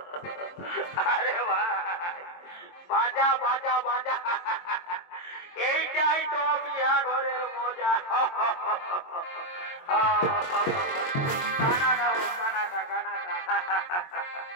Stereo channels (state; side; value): late; right; 22 ms